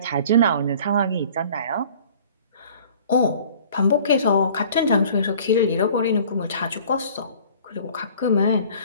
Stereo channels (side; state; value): both; inverted; correlation -0.49